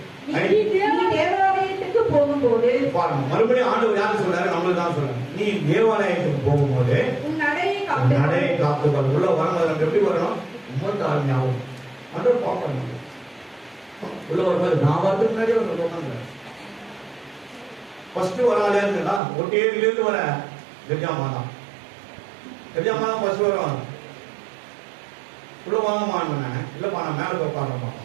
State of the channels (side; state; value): left; drops out; at 19.2 s